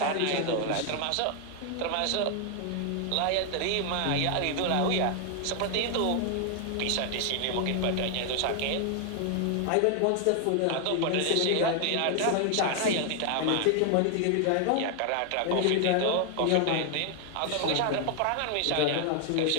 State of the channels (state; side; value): different; both; correlation 0.00